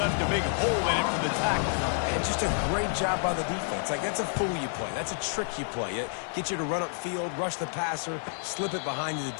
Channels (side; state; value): right; silent; 57 dB below the other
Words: a big hole in it for the tackle. And just a great job by the defense. Like, that's a fool you play. That's a trick you play. It gets you to run upfield, rush the passer, slip it behind you. The